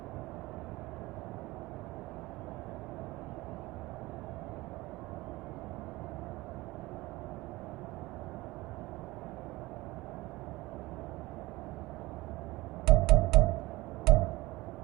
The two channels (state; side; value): quieter; left; 20.2 dB